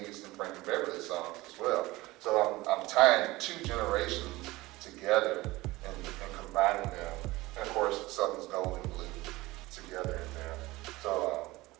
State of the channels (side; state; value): left; quieter; 19.8 dB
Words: and Frankie Beverly's songs as well. So I'm tying two generations together and combining them. And of course, Southern's Gold and Blue together in there. So